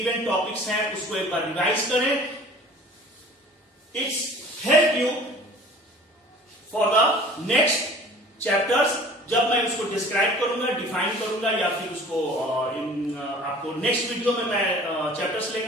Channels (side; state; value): both; normal; correlation 0.46